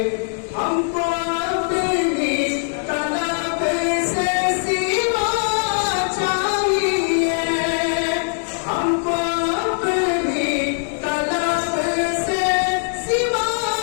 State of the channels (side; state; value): right; silent; 60 dB below the other